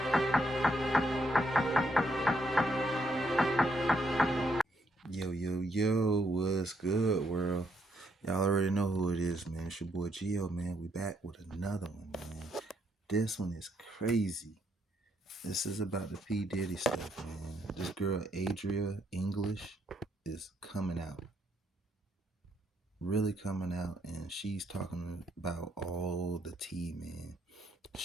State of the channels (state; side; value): normal; both; correlation 0.74